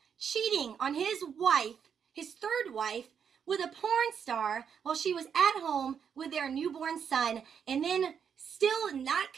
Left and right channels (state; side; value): quieter; left; 7.4 dB